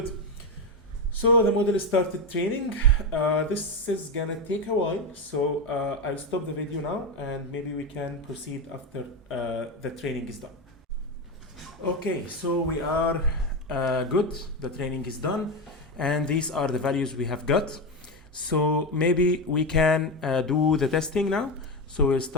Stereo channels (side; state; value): both; normal; correlation 0.14